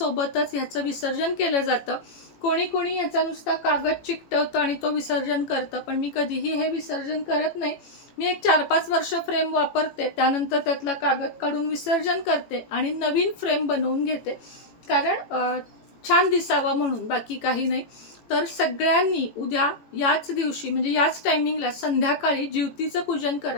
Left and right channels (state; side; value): late; right; 18 ms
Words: ह्याचं विसर्जन केलं जातं. कोणी कोणी याचा नुसता कागद चिकटवतं आणि तो विसर्जन करतं. पण मी कधीही हे विसर्जन करत नाही. मी एक 4-5 वर्ष फ्रेम वापरते, त्यानंतर त्यातला कागद काढून विसर्जन करते आणि नवीन फ्रेम बनवून घेते. कारण छान दिसावा म्हणून, बाकी काही नाही. तर सगळ्यांनी उद्या याच दिवशी म्हणजे याच टायमिंगला संध्याकाळी ज्योतीचं पूजन